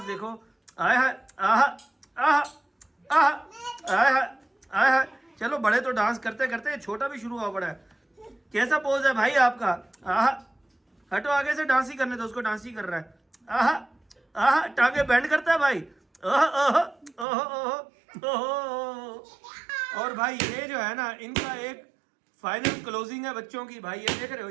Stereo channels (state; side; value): drops out; left; at 17.2 s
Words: देखो। आय हाय आहा आहा आहा आय हाय आय हाय। चलो बड़े तो डांस करते करते छोटा भी शुरू हुआ पड़ा है। कैसा पोज है भाई आपका? आहा हटो आगे से, डांस ही करने दो उसको, डांस ही कर रहा है। आहा आहा टांगे बैंड करता है भाई। ओह ओह ओह ओह। और भाई ये जो है ना इनका एक फाइनल क्लोजिंग है बच्चों की भाई। ये देख रहे हो,